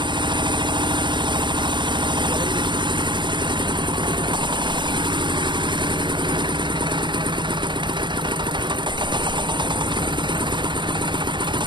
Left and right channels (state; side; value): late; left; 0.22 ms